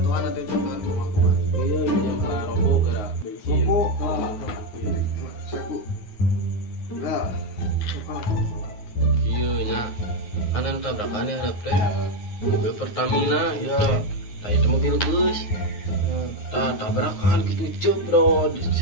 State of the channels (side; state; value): right; late; 9.5 ms